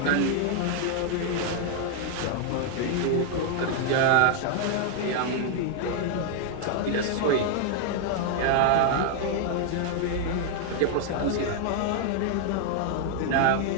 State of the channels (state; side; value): different; both; correlation 0.00